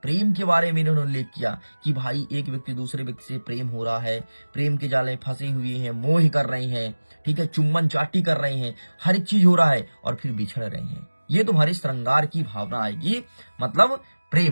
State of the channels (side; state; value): both; inverted; correlation -1.00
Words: के बारे में इन्होंने उल्लेख किया कि भाई एक व्यक्ति दूसरे व्यक्ति से प्रेम हो रहा है, प्रेम के जाले फंसे हुए हैं, मोह कर रहे हैं, ठीक है, चुम्बन चाटी कर रहे हैं, हर एक चीज हो रहा है, और फिर बिछड़ रहे हैं। ये तुम्हारी श्रृंगार की भावना आएगी, मतलब